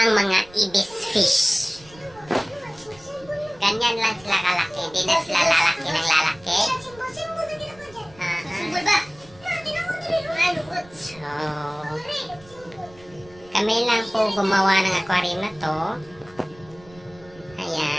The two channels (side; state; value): right; noise; rumble, 24 dB below the sound